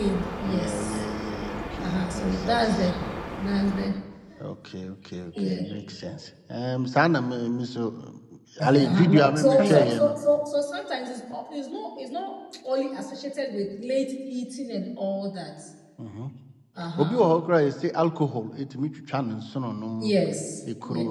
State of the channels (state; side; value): identical; both; correlation 1.00